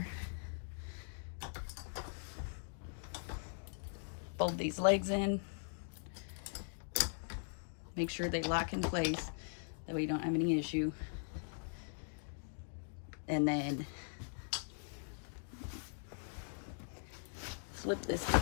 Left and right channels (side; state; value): right; silent; digital silence